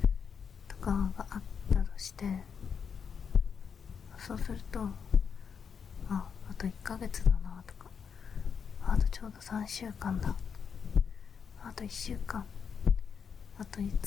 とかがあったとして、そうすると、あと1ヶ月だなとか、あとちょうど3週間だ、あと1週間、あと5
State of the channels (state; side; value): quieter; right; 6.7 dB